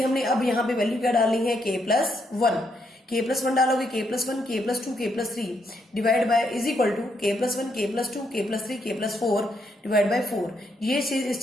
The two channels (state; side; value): normal; both; correlation 0.76